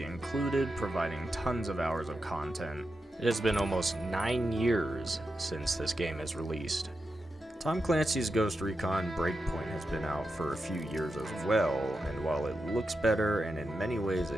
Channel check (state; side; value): normal; both; correlation 0.88